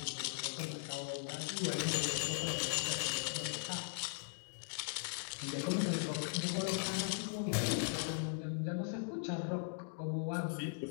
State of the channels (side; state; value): right; silent; digital silence